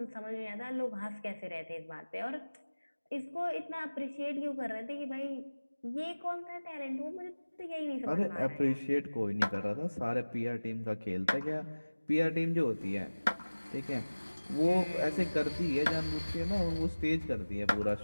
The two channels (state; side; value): inverted; both; correlation -1.00